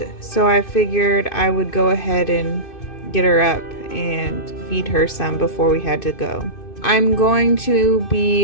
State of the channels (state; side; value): late; right; 2.6 ms